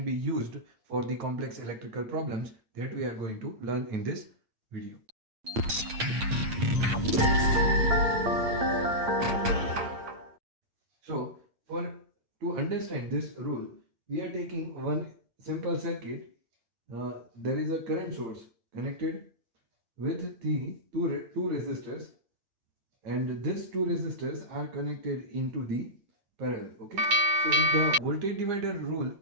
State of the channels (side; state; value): left; late; 8.7 ms